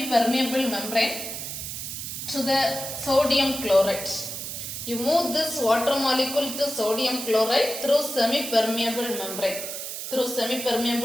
membrane to the sodium chloride. You move this water molecule to sodium chloride through semi-permeable membrane. Through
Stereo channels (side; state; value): right; noise; hiss, 6 dB below the sound